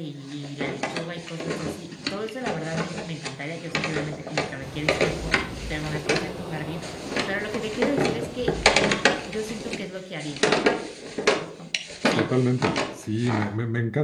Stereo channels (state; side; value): identical; both; correlation 1.00